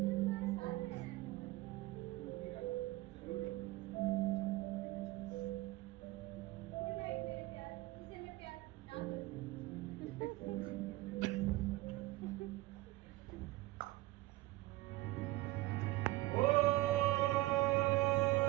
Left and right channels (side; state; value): left; quieter; 19.1 dB